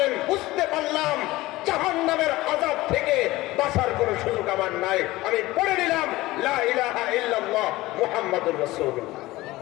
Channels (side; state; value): right; quieter; 18.6 dB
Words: বুঝতে পারলাম জাহান্নামের আযাব থেকে বাঁচার কোনো সুযোগ আমার নাই, আমি পড়ে নিলাম লা ইলাহা ইল্লাল্লাহ মুহাম্মাদুর রাসূলুল্লাহ।